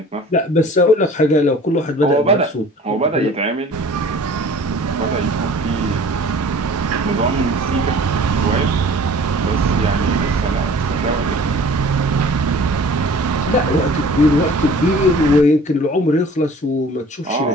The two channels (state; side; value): normal; both; correlation 0.47